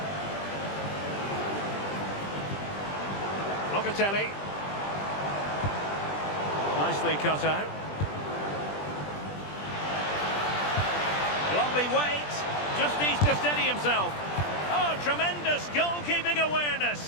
Locatelli. Nicely cut out. Lovely weight. Just needs to steady himself. Oh, tremendous goalkeeping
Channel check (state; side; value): late; right; 20 ms